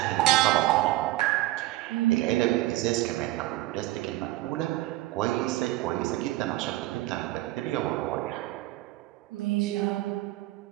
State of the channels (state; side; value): quieter; left; 17.3 dB